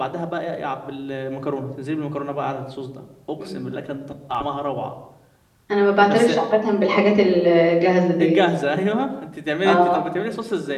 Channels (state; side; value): identical; both; correlation 1.00